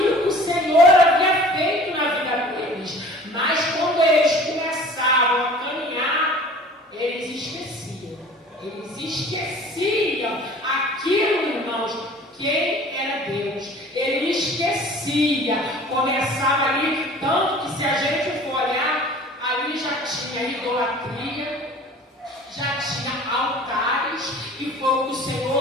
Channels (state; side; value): normal; both; correlation 0.45